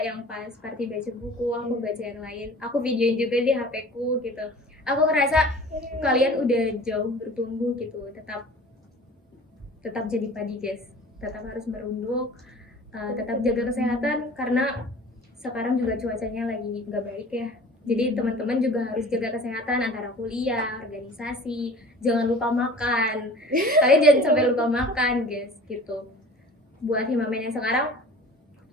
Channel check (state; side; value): normal; both; correlation 0.44